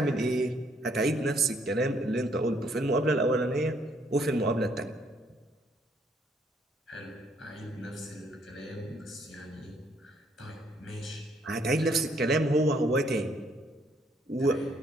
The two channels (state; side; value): normal; both; correlation 0.68